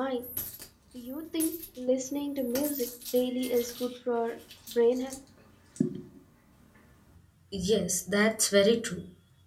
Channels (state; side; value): identical; both; correlation 1.00